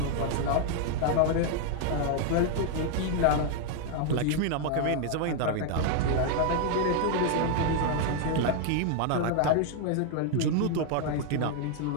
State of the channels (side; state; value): both; different; correlation 0.00